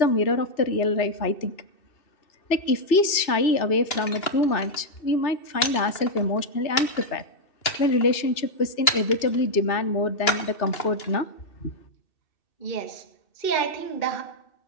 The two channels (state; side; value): late; right; 2.6 ms